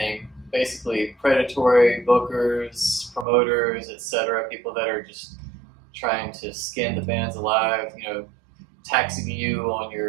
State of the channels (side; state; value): left; drops out; at 3.2 s